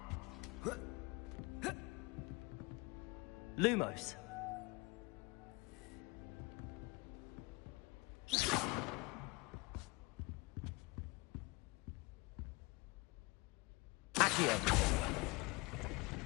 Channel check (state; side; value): quieter; right; 26.3 dB